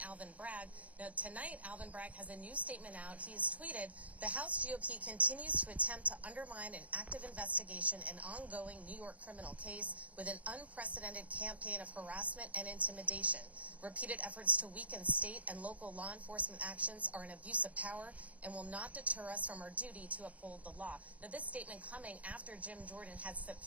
Alvin Bragg. Now, tonight, Alvin Bragg has a new statement out. He's tweeted, "The House GOP continues to attempt to undermine an active investigation and ongoing New York criminal case with an unprecedented campaign of harassment and intimidation. Repeated efforts to weaken state and local law enforcement actions are an abuse of power and will not deter us from our duty to uphold the law." Now, this statement coming after Jim Jordan had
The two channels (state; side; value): late; left; 0.069 ms